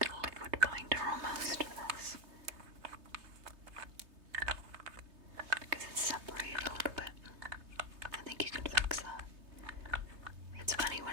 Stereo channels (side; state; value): left; late; 3.3 ms